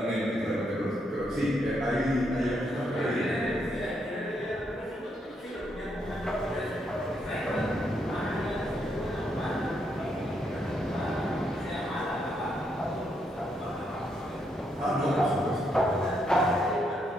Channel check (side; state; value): both; normal; correlation 0.77